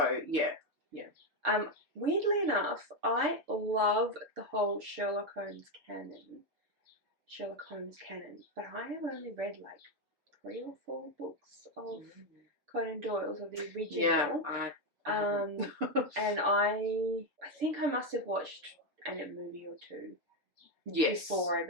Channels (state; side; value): late; left; 6.9 ms